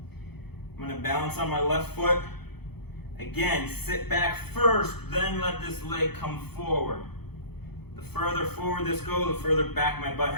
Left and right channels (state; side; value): late; right; 0.97 ms